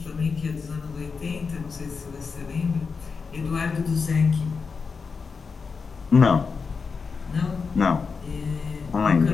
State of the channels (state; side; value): quieter; right; 5.1 dB